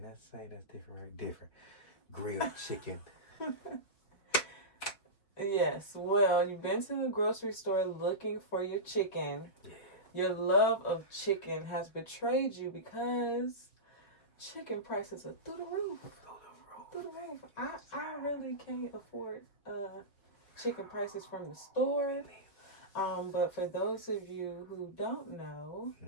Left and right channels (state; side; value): late; right; 5.3 ms